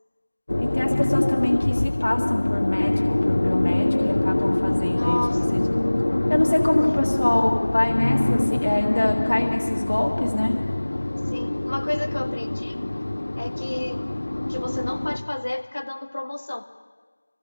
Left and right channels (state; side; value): inverted; both; correlation -1.00